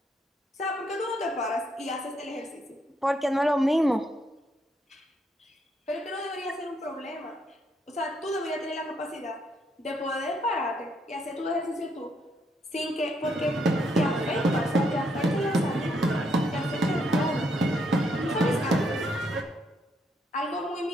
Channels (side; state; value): both; normal; correlation 0.74